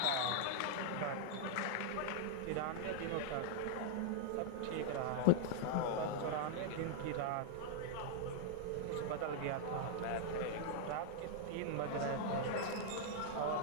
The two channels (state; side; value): different; both; correlation -0.01